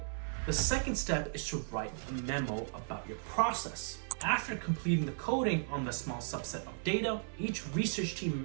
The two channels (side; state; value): left; silent; 54 dB below the other